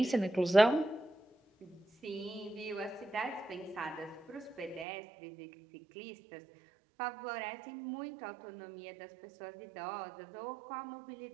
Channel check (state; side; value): drops out; left; at 4.9 s